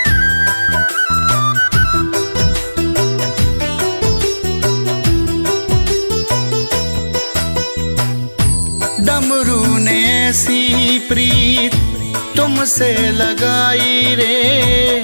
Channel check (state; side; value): inverted; both; correlation -1.00